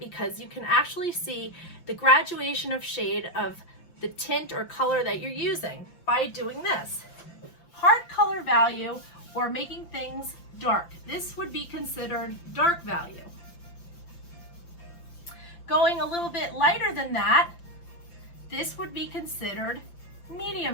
you can actually see the graduation of shade of the tint or color that you're using by doing this. Hard color value, or making things dark. This would be considered dark value. Going a little bit lighter than that, this would be considered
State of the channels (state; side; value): late; right; 5.9 ms